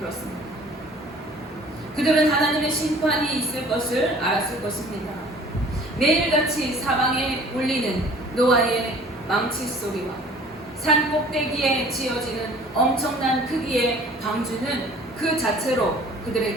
그들은 하나님의 심판이 있을 것을 알았을 것입니다. 매일같이 사방에 울리는 노아의 망치 소리와 산 꼭대기에 지어지는 엄청난 크기의 방주는 그 자체로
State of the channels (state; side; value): normal; both; correlation 0.50